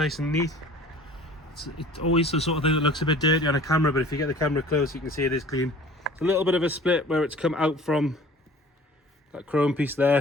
and neat. It's always the sort of thing that looks a bit dirty on a camera, but if you get the camera close, you can see it is clean. It's a little bit of a split where it's come out from that chrome piece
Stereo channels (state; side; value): normal; both; correlation 0.47